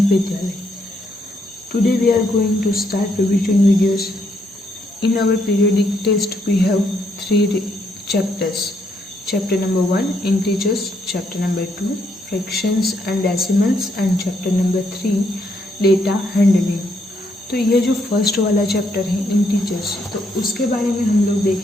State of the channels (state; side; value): normal; both; correlation 0.74